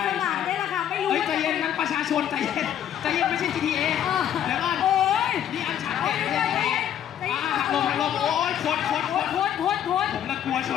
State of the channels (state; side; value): quieter; right; 10.2 dB